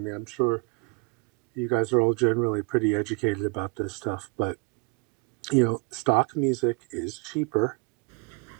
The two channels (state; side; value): quieter; left; 30.7 dB